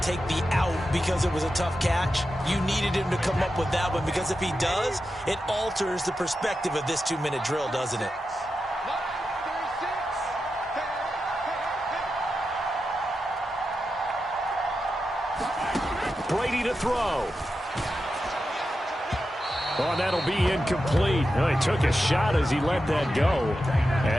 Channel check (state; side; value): normal; both; correlation 0.90